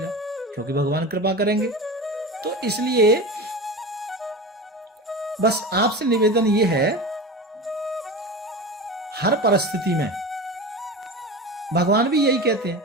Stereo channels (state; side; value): normal; both; correlation 0.28